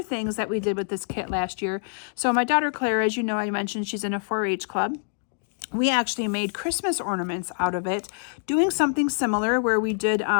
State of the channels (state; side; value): silent; right; digital silence